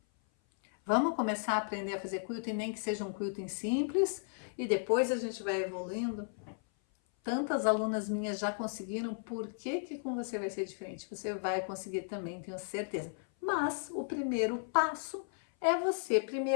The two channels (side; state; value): right; silent; 55 dB below the other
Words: Vamos começar a aprender a fazer quilting, nem que seja um quilting simples, e depois a gente vai evoluindo. Tantas alunas minhas já conseguiram, por que com você vai ser diferente? Você vai conseguir também, tenho certeza. Mas o primeiro passo é você